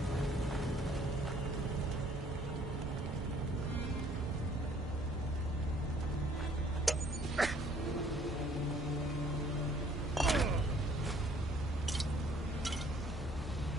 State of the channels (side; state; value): both; normal; correlation 0.59